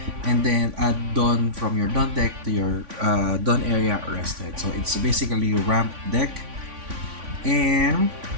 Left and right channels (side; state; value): left; late; 3.5 ms